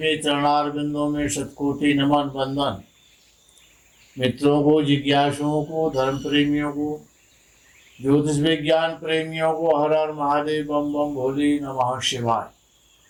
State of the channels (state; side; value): identical; both; correlation 1.00